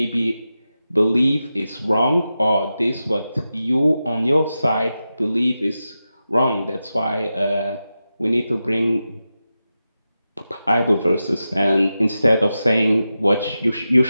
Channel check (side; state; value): both; inverted; correlation -0.91